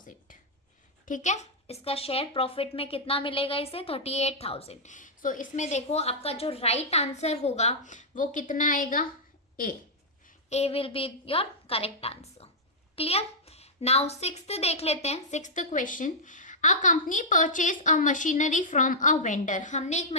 ठीक है। इसका शेयर प्रॉफिट में कितना मिलेगा इसे 38,000। सो इसमें देखो आपका जो राइट आंसर होगा वो कितना आएगा, A will be your correct answer. Clear. Now sixth देख लेते हैं, sixth question. A company purchase a machinery from a vendor, हमने एक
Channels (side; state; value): both; normal; correlation -0.08